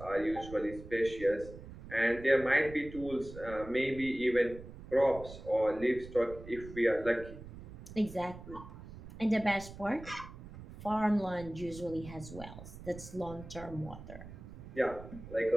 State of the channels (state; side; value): noise; right; rumble, 14 dB below the sound